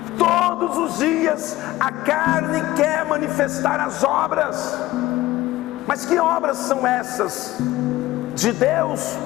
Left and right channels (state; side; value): quieter; right; 16.7 dB